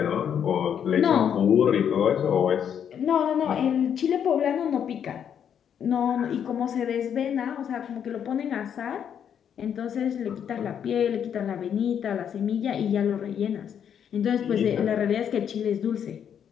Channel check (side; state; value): right; quieter; 8.5 dB